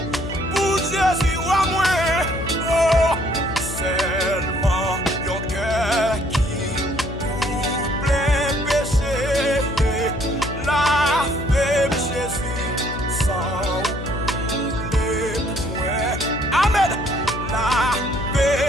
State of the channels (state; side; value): noise; left; hum, 8 dB below the sound